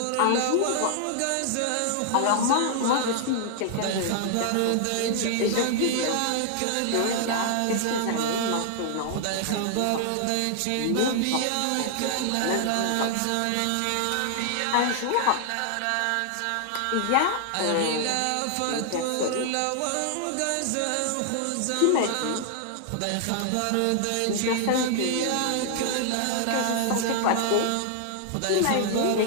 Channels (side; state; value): both; different; correlation 0.00